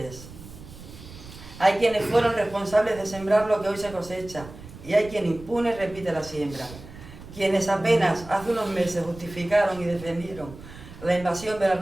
hay quienes fueron responsables de sembrar lo que hoy se cosecha, y hay quien impune repite la siembra. quienes apenas hace unos meses justificaron y defendieron la invasión de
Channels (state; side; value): noise; right; rumble, 16 dB below the sound